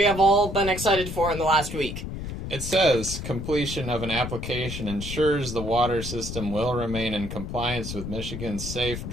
have all been excited for in the last week. It says, completion of an application ensures the water system will remain in compliance with Michigan's Safe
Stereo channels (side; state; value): left; noise; rumble, 7 dB below the sound